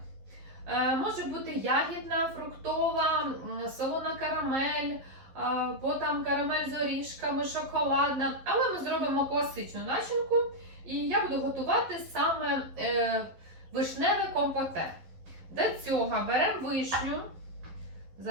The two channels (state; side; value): late; left; 11 ms